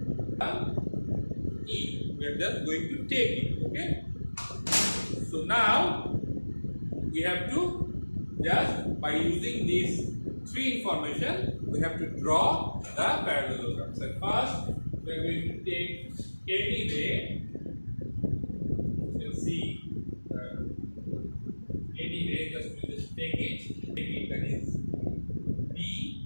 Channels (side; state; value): both; inverted; correlation -1.00